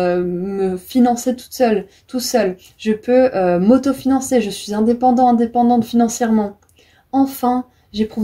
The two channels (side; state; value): both; identical; correlation 1.00